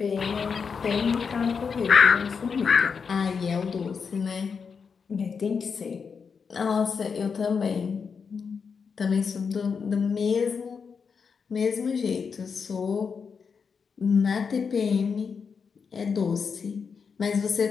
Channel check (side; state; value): right; quieter; 5.8 dB